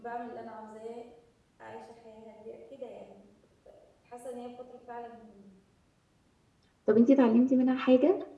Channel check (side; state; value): both; identical; correlation 1.00